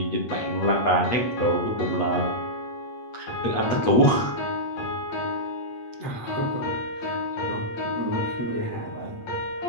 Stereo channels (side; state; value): right; late; 8.3 ms